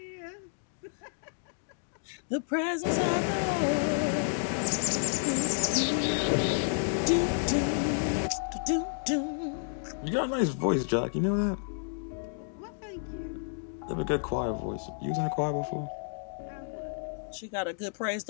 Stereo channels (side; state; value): right; silent; digital silence